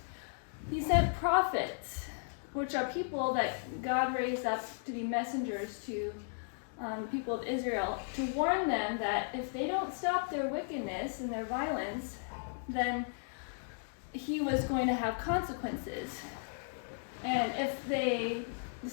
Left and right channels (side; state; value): right; silent; digital silence